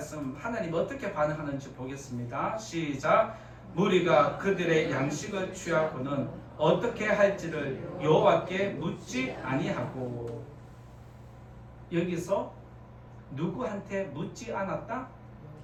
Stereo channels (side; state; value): both; identical; correlation 1.00